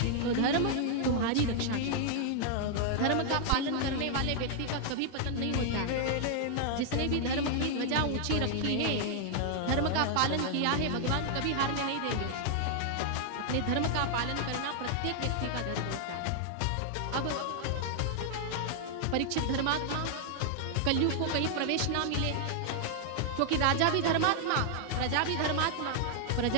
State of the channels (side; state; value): both; different; correlation 0.00